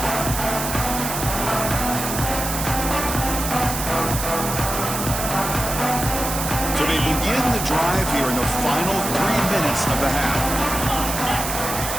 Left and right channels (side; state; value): right; noise; hiss, 4 dB below the sound